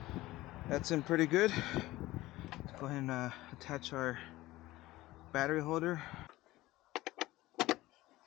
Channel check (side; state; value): right; quieter; 17.8 dB